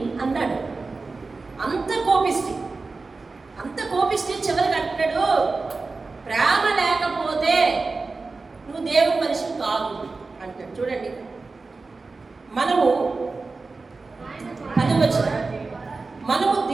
అన్నాడు. అంత కోపిష్టి చివరికి అంటాడు, ప్రేమ లేకపోతే నువ్వు దేవుని మనిషి కాదు అంటాడు. చూడండి, మనము మనము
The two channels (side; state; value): left; quieter; 3.9 dB